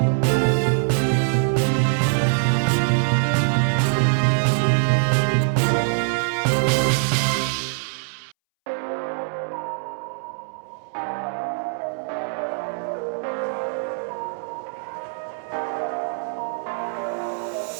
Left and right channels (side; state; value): left; silent; 63 dB below the other